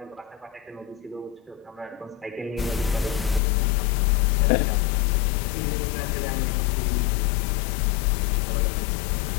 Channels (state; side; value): drops out; right; at 3.4 s